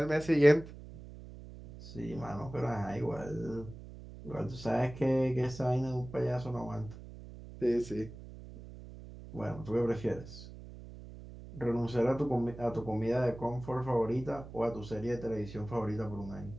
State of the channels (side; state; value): right; noise; hum, 14 dB below the sound